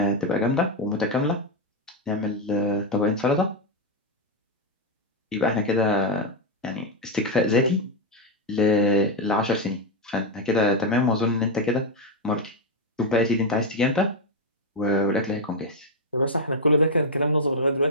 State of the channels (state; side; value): normal; both; correlation 0.03